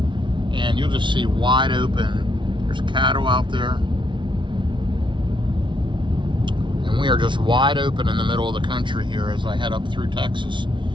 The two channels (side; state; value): left; late; 0.24 ms